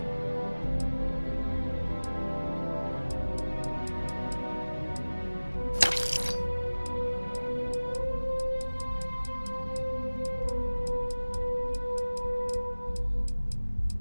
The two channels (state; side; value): inverted; both; correlation -1.00